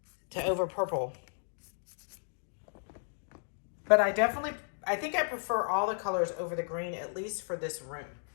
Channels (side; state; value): right; silent; digital silence